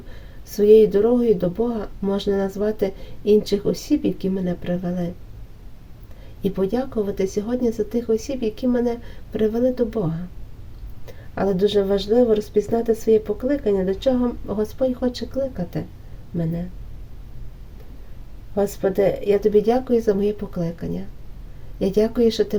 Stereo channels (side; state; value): both; identical; correlation 1.00